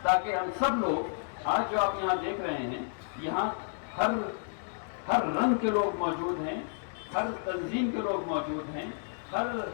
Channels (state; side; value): silent; right; digital silence